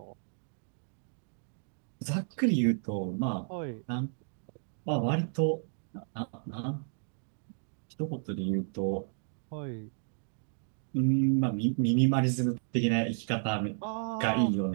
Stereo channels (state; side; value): silent; left; digital silence